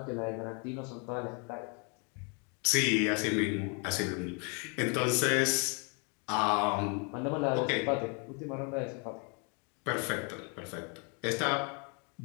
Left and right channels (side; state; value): right; quieter; 35.7 dB